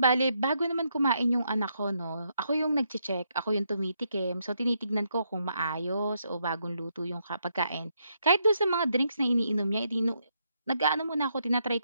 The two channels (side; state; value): both; inverted; correlation -0.78